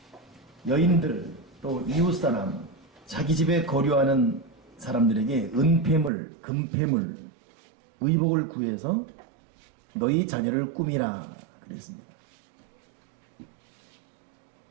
여인들 또 이웃사람 자기 집에 거류하는 사람들에게 은폐물, 금폐물, 의복을 구해서 너희 자녀를 꾸미라 그랬습니다.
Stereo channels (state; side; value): drops out; left; at 6.1 s